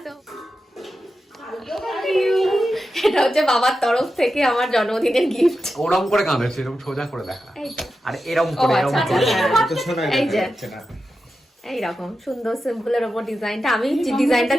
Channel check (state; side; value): normal; both; correlation 0.90